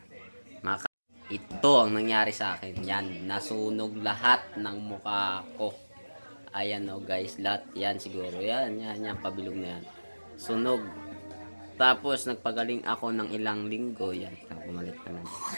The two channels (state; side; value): inverted; both; correlation -1.00